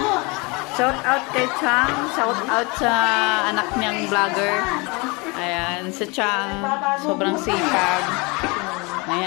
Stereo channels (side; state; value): right; quieter; 27.6 dB